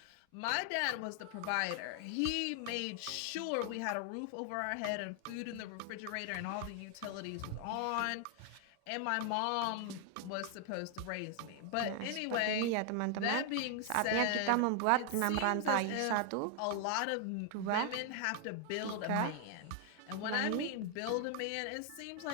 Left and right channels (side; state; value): both; different; correlation 0.00